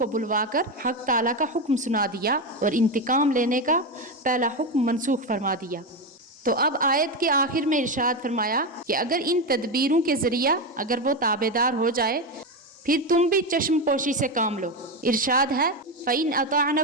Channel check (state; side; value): normal; both; correlation 0.13